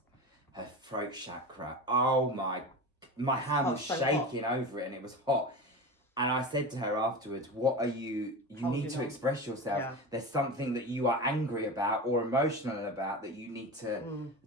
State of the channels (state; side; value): normal; both; correlation 0.27